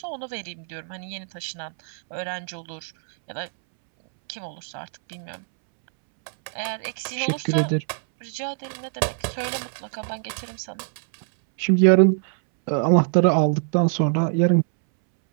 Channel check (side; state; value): left; silent; 63 dB below the other